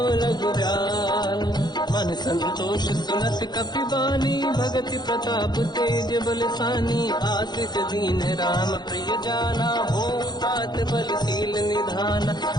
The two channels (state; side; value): late; right; 0.21 ms